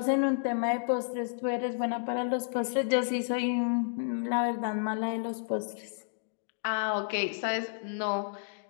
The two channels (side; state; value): right; silent; digital silence